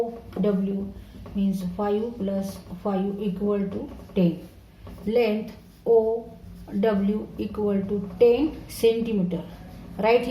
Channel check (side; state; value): both; identical; correlation 1.00